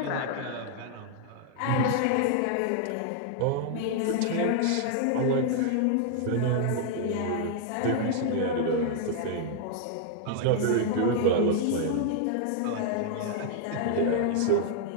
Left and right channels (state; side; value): different; both; correlation -0.01